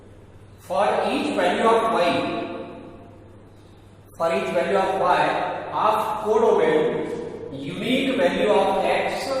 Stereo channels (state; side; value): identical; both; correlation 1.00